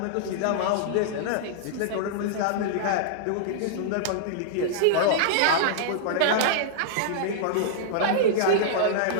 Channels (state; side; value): different; both; correlation -0.01